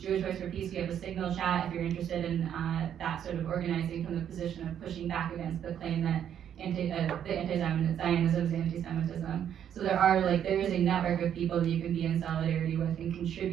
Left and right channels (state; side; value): quieter; left; 9.5 dB